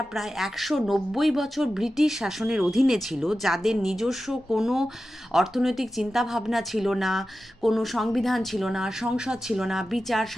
প্রায় 190 বছর ব্রিটিশ শাসনের অধীনে ছিল, যাদের নিজস্ব কোনো অর্থনৈতিক চিন্তাভাবনা ছিল না, কোনো সংবিধান ছিল না, সংসদ ছিল না, বিচার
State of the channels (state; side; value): normal; both; correlation 0.93